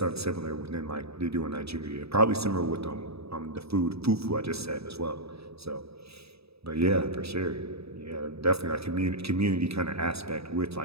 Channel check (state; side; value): late; left; 0.78 ms